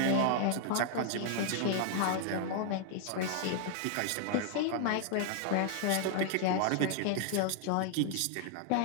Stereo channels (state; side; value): different; both; correlation -0.01